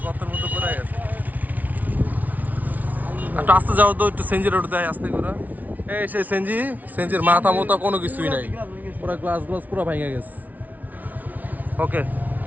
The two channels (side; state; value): left; late; 0.076 ms